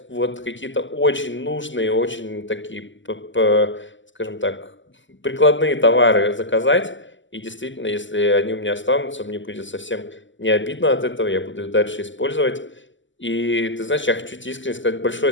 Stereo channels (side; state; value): right; late; 0.55 ms